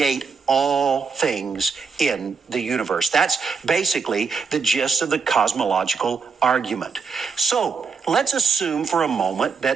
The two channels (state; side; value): quieter; left; 5.5 dB